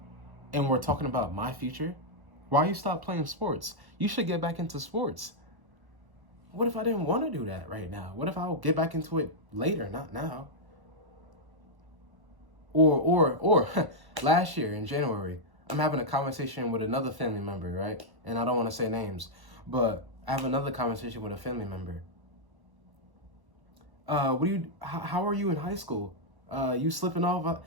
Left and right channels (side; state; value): left; late; 1.1 ms